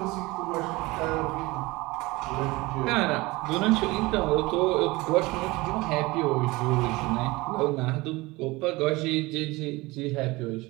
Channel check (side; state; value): left; quieter; 22.0 dB